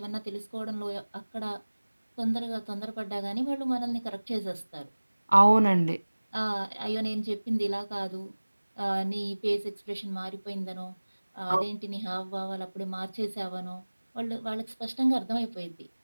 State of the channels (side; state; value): both; inverted; correlation -1.00